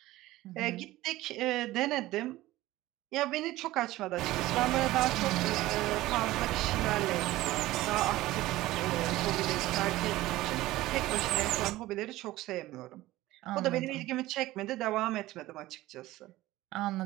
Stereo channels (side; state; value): left; quieter; 17.0 dB